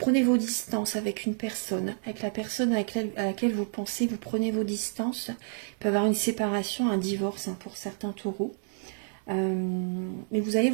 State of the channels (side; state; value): left; silent; 58 dB below the other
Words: vos distances avec une personne, avec la personne à laquelle vous pensez, vous prenez vos distances. Il peut y avoir une séparation, un divorce hein, pour certains taureaux. Mais vous allez